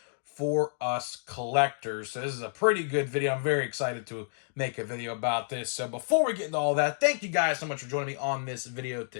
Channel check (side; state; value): right; silent; digital silence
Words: for us collectors. So this is a pretty good video. I'm very excited to make a video about this. So before we get into all that, thank you guys so much for joining me on this video